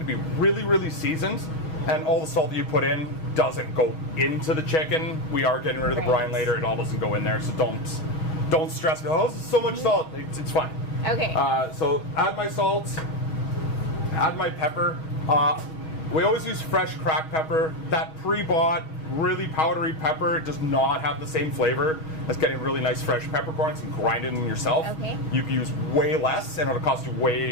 to be really, really seasoned, and all the salt that you put in doesn't go into the chicken. We are getting rid of the brine later. It all doesn't go in there, so don't stress. Oh, this is so much salt. It's fine. Okay. So add my salt, add my pepper. We always use fresh cracked pepper. That pre-bought, really powdery pepper does not have the same flavor as getting really nice fresh peppercorns and grinding them yourself. Okay. You can use way less, and it'll cost you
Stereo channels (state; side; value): late; right; 6.3 ms